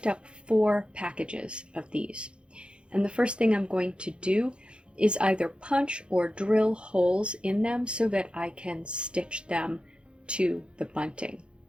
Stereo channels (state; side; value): late; left; 0.056 ms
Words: up 4 packages of these. And the first thing I'm going to do is either punch or drill holes in them so that I can stitch them to the bunting.